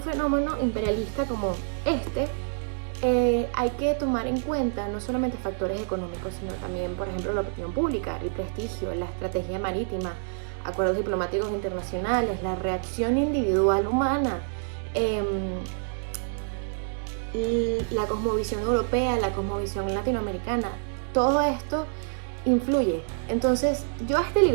fenómeno imperialista como este, hay que tomar en cuenta no solamente factores económicos, sino también, por ejemplo, la opinión pública, el prestigio, la estrategia marítima, acuerdos diplomáticos internacionales, la reacción individual humana, la cosmovisión europea, la cosmovisión latinoamericana. Todo esto influye. Entonces, yo a este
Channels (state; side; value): silent; left; digital silence